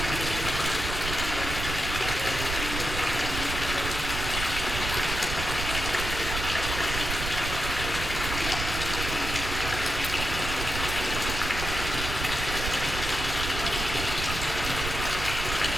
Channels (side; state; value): right; noise; rumble, 4 dB below the sound